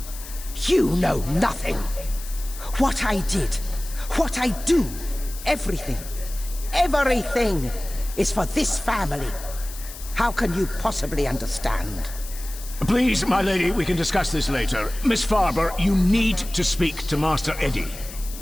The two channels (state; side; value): noise; left; hiss, 14 dB below the sound